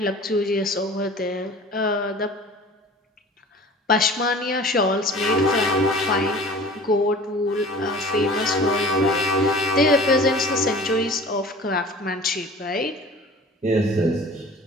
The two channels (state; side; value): normal; both; correlation 0.43